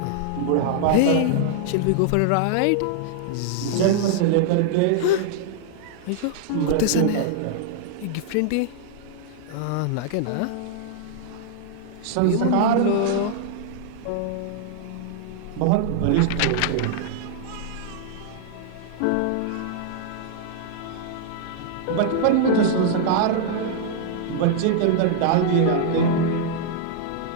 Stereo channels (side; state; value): both; different; correlation -0.01